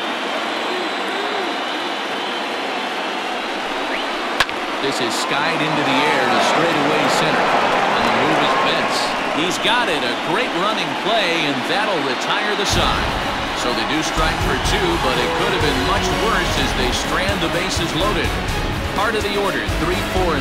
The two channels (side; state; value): both; identical; correlation 1.00